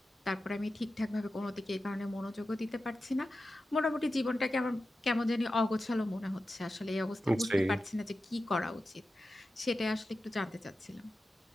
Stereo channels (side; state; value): both; normal; correlation 0.93